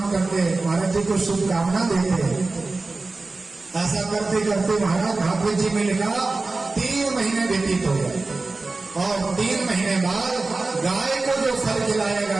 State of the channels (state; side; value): quieter; left; 3.5 dB